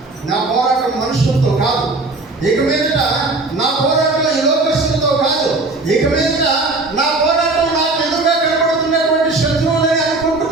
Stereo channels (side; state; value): left; quieter; 3.3 dB